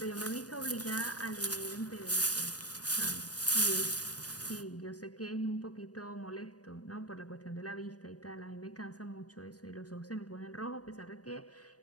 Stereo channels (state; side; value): late; right; 0.68 ms